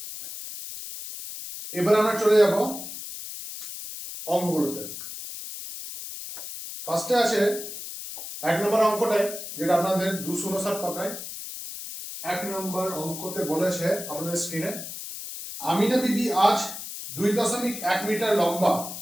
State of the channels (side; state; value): left; noise; hiss, 9 dB below the sound